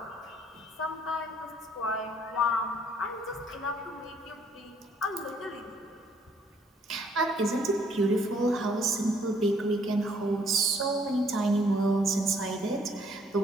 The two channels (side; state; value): both; normal; correlation 0.64